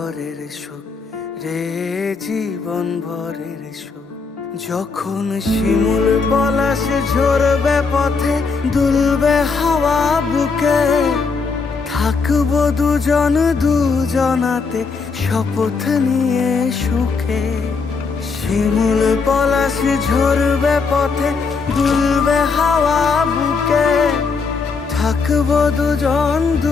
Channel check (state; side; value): quieter; right; 4.8 dB